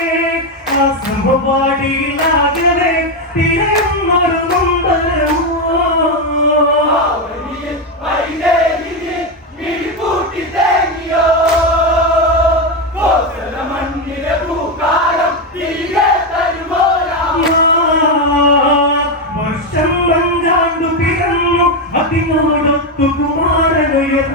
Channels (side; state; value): both; normal; correlation 0.08